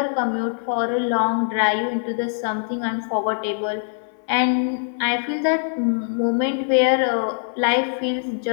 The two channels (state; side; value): silent; right; 64 dB below the other